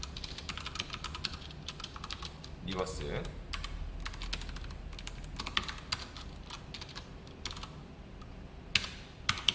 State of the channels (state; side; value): identical; both; correlation 1.00